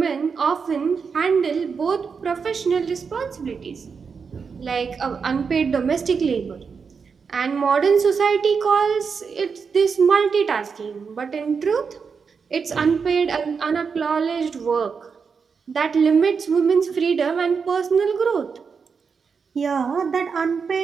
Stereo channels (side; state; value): left; quieter; 5.7 dB